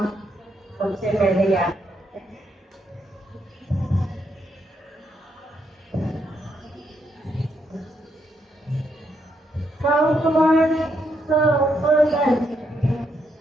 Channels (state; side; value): normal; both; correlation 0.78